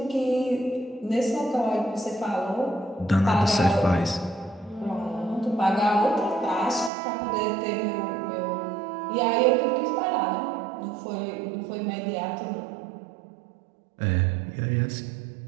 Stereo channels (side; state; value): left; drops out; at 6.9 s